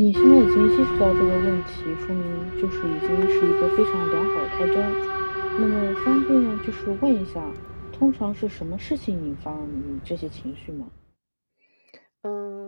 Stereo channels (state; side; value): inverted; both; correlation -1.00